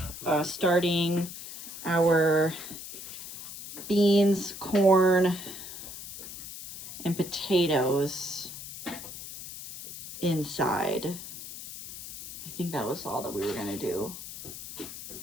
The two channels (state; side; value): noise; left; hiss, 11 dB below the sound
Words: starting our beans, corn, and potatoes inside. I think that was all that we were gonna do.